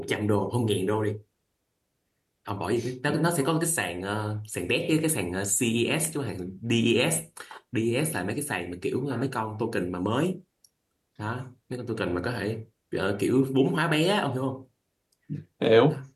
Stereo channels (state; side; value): identical; both; correlation 1.00